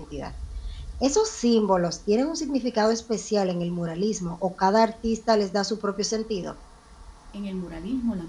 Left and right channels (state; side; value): identical; both; correlation 1.00